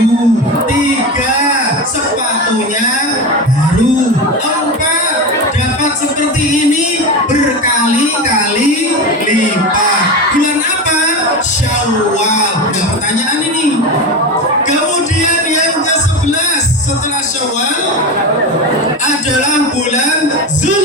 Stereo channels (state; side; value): normal; both; correlation 0.22